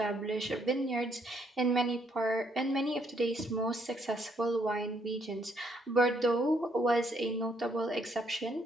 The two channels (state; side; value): normal; both; correlation 0.71